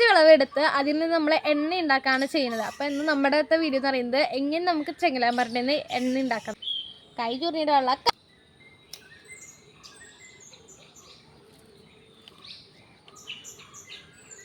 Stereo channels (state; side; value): identical; both; correlation 1.00